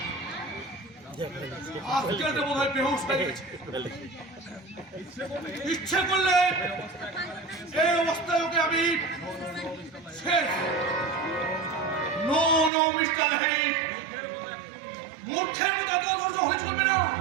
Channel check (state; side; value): drops out; left; at 12.7 s